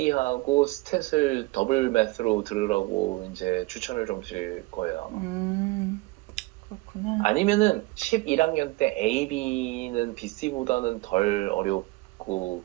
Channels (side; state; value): left; quieter; 22.4 dB